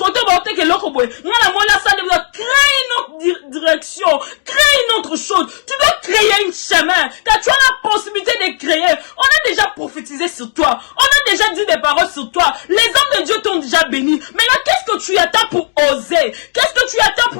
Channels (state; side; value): silent; right; digital silence